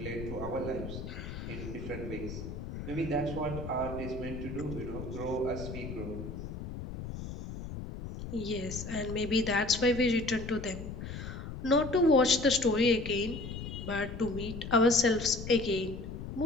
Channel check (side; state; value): left; noise; rumble, 8 dB below the sound